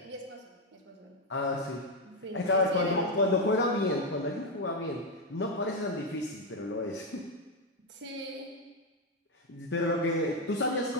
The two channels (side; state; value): both; normal; correlation 0.05